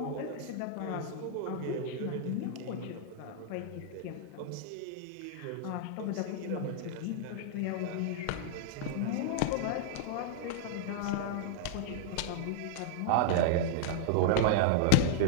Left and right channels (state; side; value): different; both; correlation 0.00